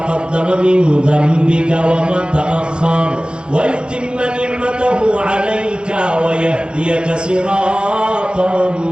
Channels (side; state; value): left; late; 0.051 ms